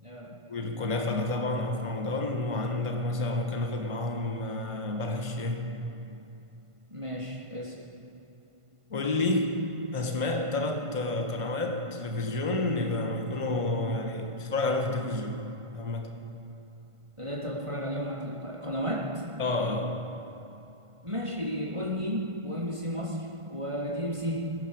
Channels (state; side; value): late; left; 1.5 ms